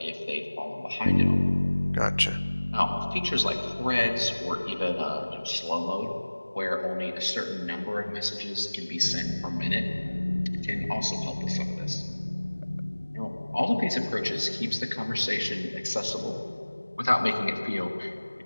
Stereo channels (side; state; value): both; inverted; correlation -1.00